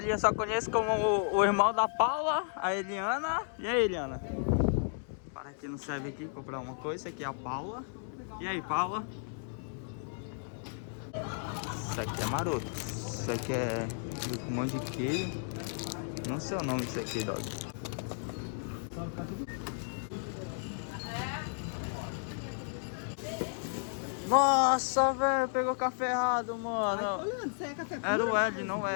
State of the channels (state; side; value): silent; right; digital silence